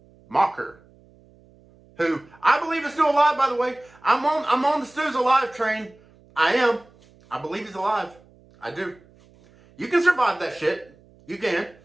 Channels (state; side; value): noise; right; hum, 28 dB below the sound